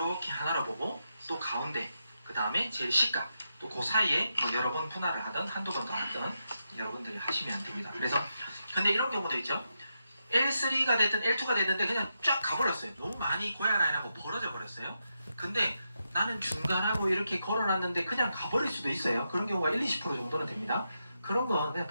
하나로 보고 또 가운데 그 다음에 제일 시가 또 그 사이에 여러 번 분할을 하든 한두 번 더 하든 여러분들이 하시면 됩니다. 그래서 근데 이런 경우도 있죠. L3가 됐든 L2가 됐는데 그냥 쫙 가버렸어요. 너무 많이 고야 라인하고 벌어져 버렸어요. 근데 나는 중간하고 이렇게 걸어놨는데 그냥 가버릴 수도 있어요. 그런 경우가 1-20% 정도는 됩니다. 그런 건 그냥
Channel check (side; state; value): both; inverted; correlation -0.85